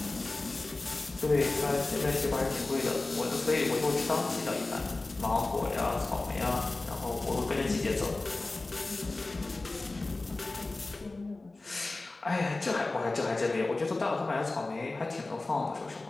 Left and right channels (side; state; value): right; quieter; 3.2 dB